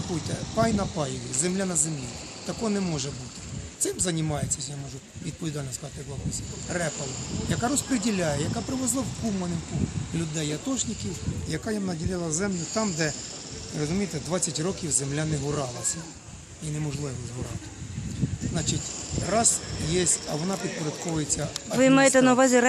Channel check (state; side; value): identical; both; correlation 1.00